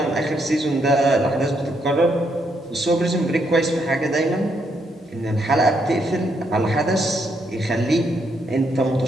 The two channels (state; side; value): normal; both; correlation 0.76